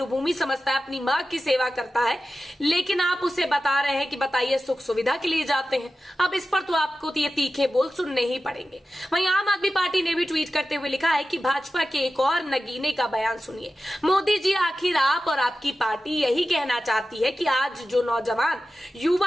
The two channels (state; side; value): normal; both; correlation 0.93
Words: समझता है, अपनी मां की सेवा करता है, लेकिन आप उसे बता रहे हैं कि बताइए सुख सुविधा के लिए जाते हैं। अब इस पर तो आपको ये तीखे बोल सुनने ही पड़ेंगे। वहीं आम आदमी पार्टी ने भी ट्वीट करते हुए लिखा है कि भाजपा के एक और नगीने का बयान सुनिए। मोदी जी, आखिर आप और आपकी पार्टी यही कहना चाहती है कि आज जो नौजवान